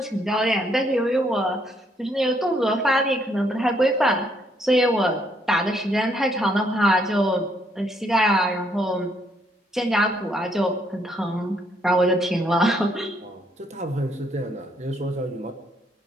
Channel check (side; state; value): both; normal; correlation 0.71